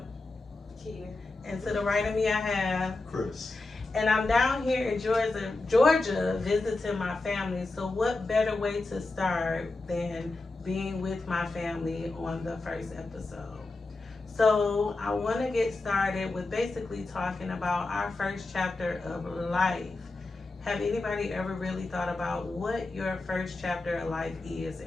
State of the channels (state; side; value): quieter; right; 3.2 dB